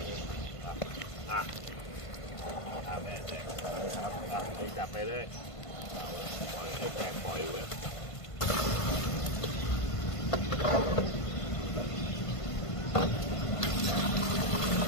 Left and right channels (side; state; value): right; late; 1.5 ms